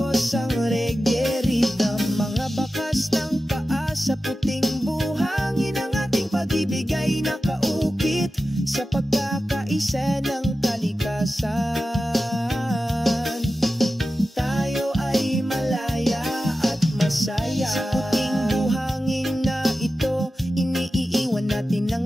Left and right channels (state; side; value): normal; both; correlation 0.93